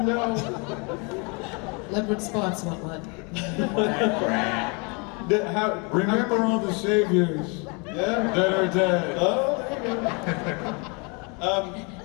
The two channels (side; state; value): right; quieter; 32.1 dB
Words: no. Leopard spots, what? Remember all the saviors that are dead. Oh, there you go.